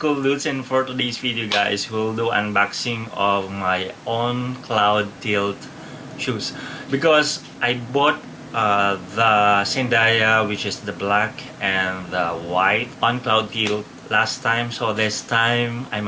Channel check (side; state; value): both; identical; correlation 1.00